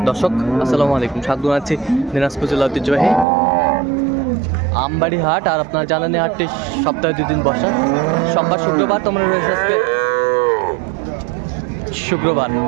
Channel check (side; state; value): left; drops out; at 3.2 s